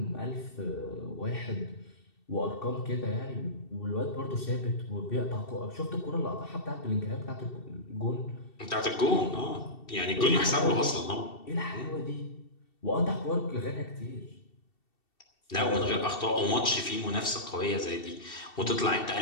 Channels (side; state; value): right; late; 2.7 ms